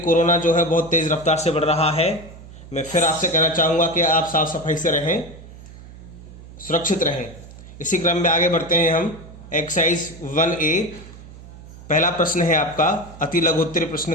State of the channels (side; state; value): right; noise; hum, 17 dB below the sound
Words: जो है बहुत तेज़ रफ्तार से बढ़ रहा है। मैं फिर आपसे कहना चाहूँगा कि आप साफ सफाई से रहें, सुरक्षित रहें। इसी क्रम में आगे बढ़ते हैं हम। एक्सरसाइज 1A, पहला प्रश्न है आपका अति लघुत्तरीय